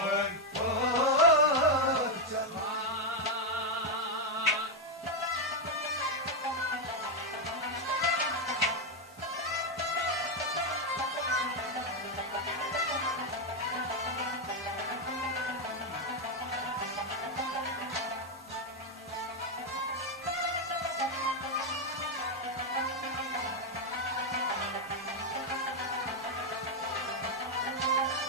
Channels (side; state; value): both; normal; correlation 0.02